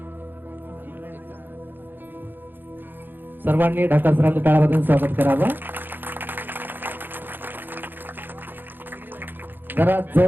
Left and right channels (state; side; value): late; left; 0.094 ms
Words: सर्वांनी ढाका सरांचं टाळ्यावाजून स्वागत करावं. जरा